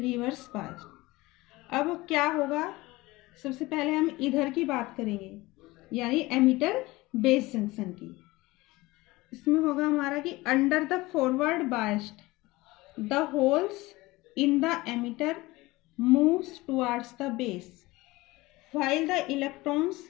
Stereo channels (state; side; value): quieter; right; 20.5 dB